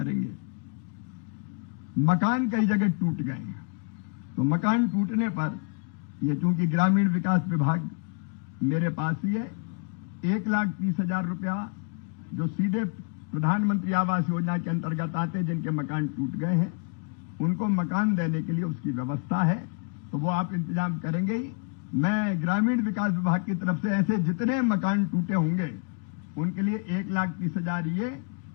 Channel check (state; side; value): quieter; right; 38.7 dB